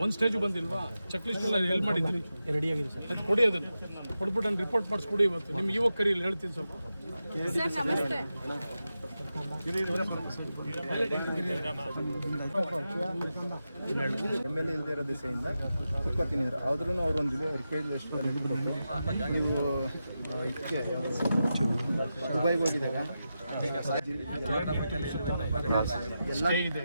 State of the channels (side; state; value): both; inverted; correlation -0.90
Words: ಒಂದು ಸ್ಟೇಜ್ ಬಂದಿಲ್ವಾ? ಚೆಕ್ ಲಿಸ್ಟ್ ಎಲ್ಲ ಎಲ್ಲಿ ಮಾಡಿದ್ದೀರಿ? ರೆಡಿ ಆಗಿದೆ ಸರ್. ಅದು ಕೊಡಿ, ಅದನ್ನು ಕೊಟ್ಬಿಟ್ಟು ನಾನು ರಿಪೋರ್ಟ್ ಮಾಡಿಸ್ಕೊಡಿ. ಇವತ್ತು ನಿಮ್ಗೆ ಇವಾಗ ಕರೀಲಿ ಹೇಳ್ತೀನಿ ಸ್ವಲ್ಪ. MLA ಇಲ್ಲದೆ ಇರೋ ದಿಸೆಯಿಂದ ಕುತ್ಕೊತಿದ್ರು ಆದ್ರೂ ಅವ್ರೊಂದು ರಿಕ್ವೆಸ್ಟ್ ನೀವು ಇದಕ್ಕೆ ದುಬೈಗೆ ಹೋಗಿದಾಗ ಸ್ಟೇ ಇದೆ